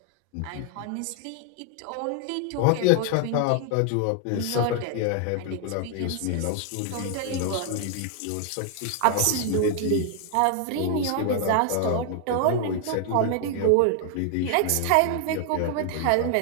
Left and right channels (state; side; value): different; both; correlation 0.00